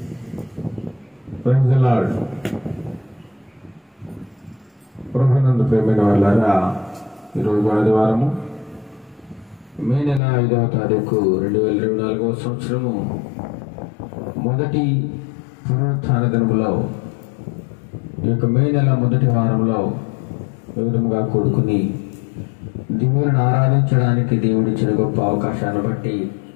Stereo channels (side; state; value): right; drops out; at 10.2 s